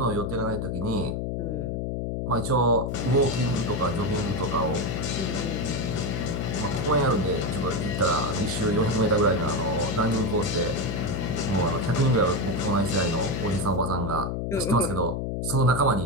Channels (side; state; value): left; noise; hum, 2 dB below the sound